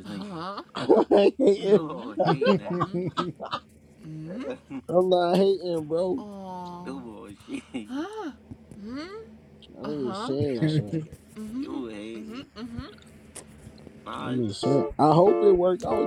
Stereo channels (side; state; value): both; identical; correlation 1.00